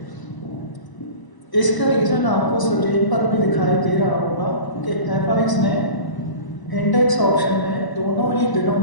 इसका रीज़न आपको स्क्रीन पर भी दिखाई दे रहा होगा कि एफआईएक्स ने इंडेक्स ऑप्शन में दोनों ही दिनों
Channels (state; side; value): late; right; 1.0 ms